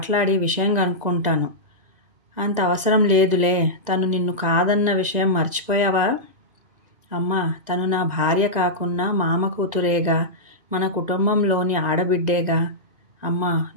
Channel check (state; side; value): late; left; 2.0 ms